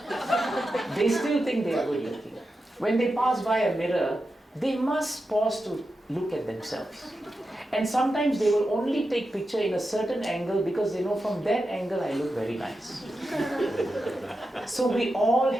they still think they are good looking. When they pass by a mirror, they must pause to look at themselves. And sometimes they will only take picture in a certain angle because they know from that angle I look very nice. So we all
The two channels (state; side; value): normal; both; correlation 0.90